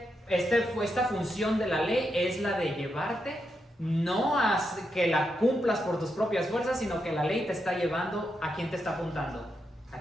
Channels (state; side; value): normal; both; correlation 0.84